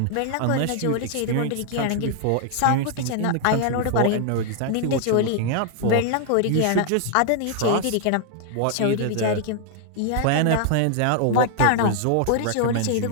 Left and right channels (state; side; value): different; both; correlation 0.00